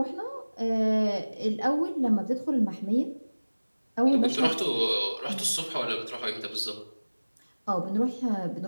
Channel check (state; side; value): inverted; both; correlation -1.00